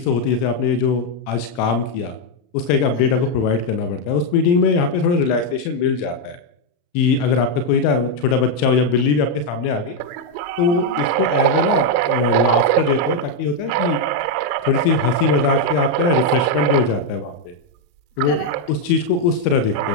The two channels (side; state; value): right; late; 34 ms